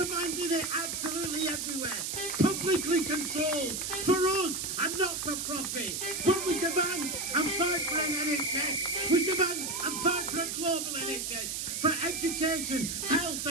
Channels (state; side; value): noise; right; hiss, 3 dB below the sound